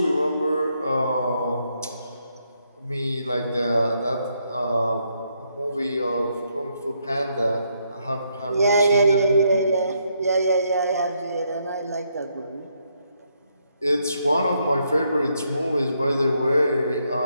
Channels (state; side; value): inverted; both; correlation -0.75